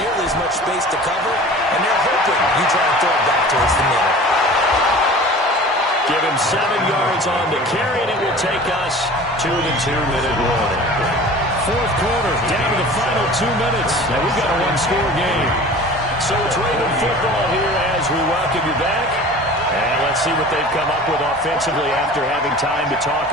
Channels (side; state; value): both; normal; correlation 0.41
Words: as much space to cover, and they're hoping you try and throw it back towards the middle. Give him 7 yards on the carry, and it will take us to the 2-minute warning. 4th quarter, down to the final 2 minutes, and we've got a 1-score game. So it's Raven football here as we welcome you back. And let's see what they've come up with offensively after having time to talk